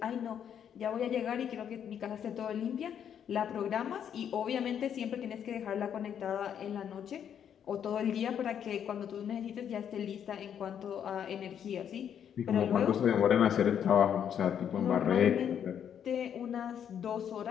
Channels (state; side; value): quieter; right; 8.8 dB